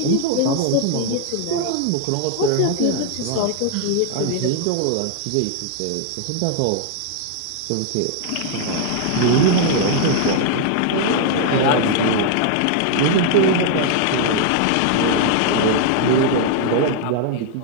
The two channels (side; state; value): both; different; correlation 0.00